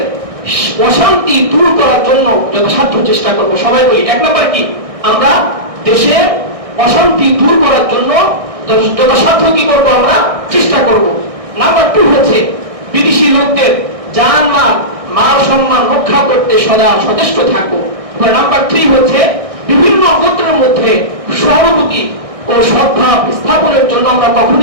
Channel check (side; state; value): left; late; 1.6 ms